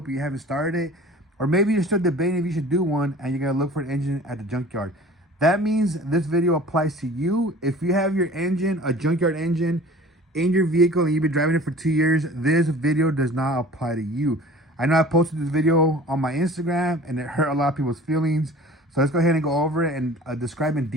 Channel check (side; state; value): both; normal; correlation 0.44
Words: you haven't started it, or maybe you're still debating if you should do one and you're gonna look for an engine at the junkyard. That means this video applies to you. If you have your engine, a junkyard engine, in your vehicle and you've been driving it for 2 years, this video does not apply to you. I know I posted this video on my Instagram and it hurt a lot of people's feelings. So let's go ahead and go over it and describe in